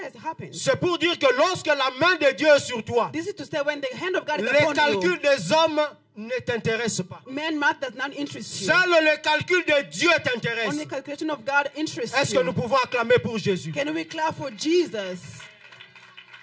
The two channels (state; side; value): identical; both; correlation 1.00